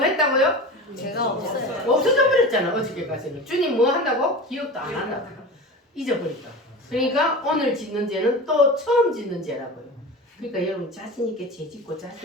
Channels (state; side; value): normal; both; correlation 0.31